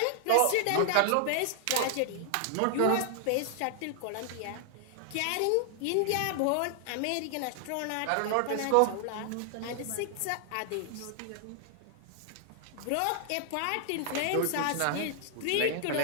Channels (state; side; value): different; both; correlation 0.00